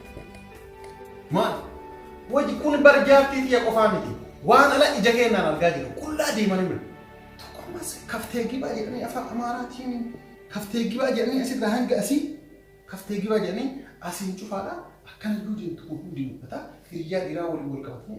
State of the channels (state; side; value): identical; both; correlation 1.00